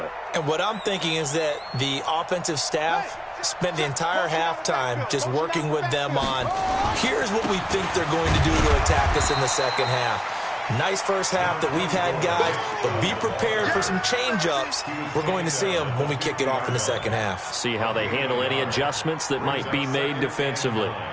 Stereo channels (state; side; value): identical; both; correlation 1.00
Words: And what I'm thinking is that the offensive staff spent the entire halftime just working with them on, here's what we think they're going to do to attack us in the second half. Nice first half that we've had, guys, but be prepared for some change-ups. We're going to see them when we kick it off in the second half. See how they handle any adjustments that might be made defensively.